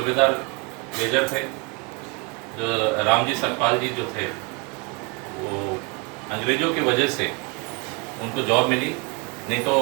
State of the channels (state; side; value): quieter; left; 29.1 dB